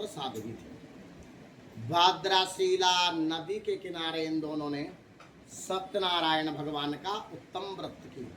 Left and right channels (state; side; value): identical; both; correlation 1.00